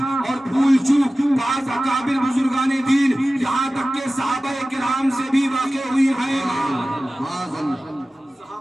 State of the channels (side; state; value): both; normal; correlation 0.96